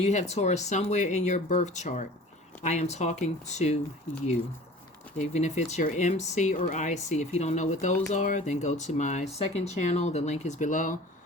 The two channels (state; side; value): normal; both; correlation 0.43